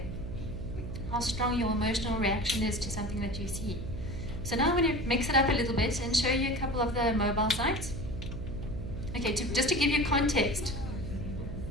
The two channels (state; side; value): noise; right; hum, 7 dB below the sound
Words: How strong your emotional reaction is to something that you see. So now I'm going to mix it up a little bit and show you a couple of the mobile sites. Okay, just to give you context,